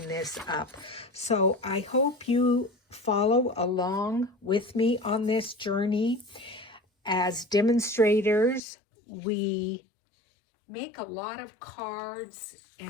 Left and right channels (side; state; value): right; drops out; at 8.6 s